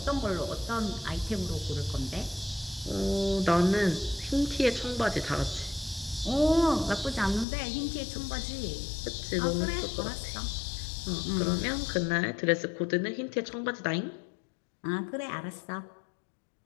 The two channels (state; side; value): drops out; right; at 7.5 s